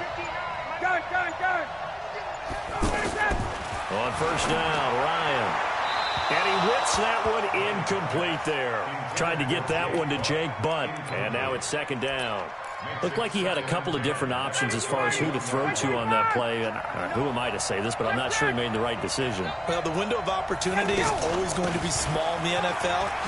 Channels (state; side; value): identical; both; correlation 1.00